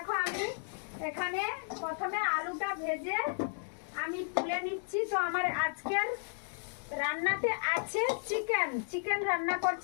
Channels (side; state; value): right; silent; digital silence